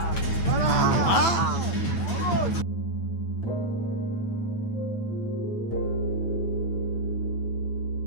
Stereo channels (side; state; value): right; late; 9.2 ms